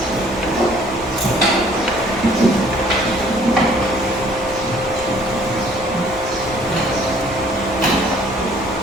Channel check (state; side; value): normal; both; correlation 0.58